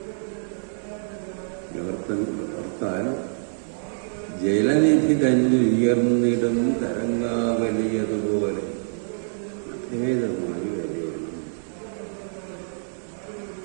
ഓർത്താൽ ജലനിധി തന്നെ ഉയർന്നിടും തരംഗാവലിയതുപോലെ അഭേദമായി വരികയാണ്.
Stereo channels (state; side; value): silent; left; 61 dB below the other